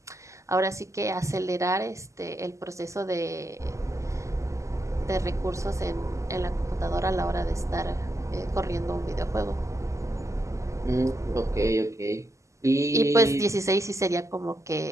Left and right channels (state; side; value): late; left; 0.15 ms